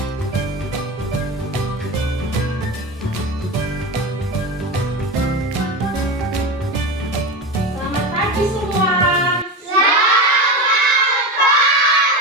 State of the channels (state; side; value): normal; both; correlation 0.22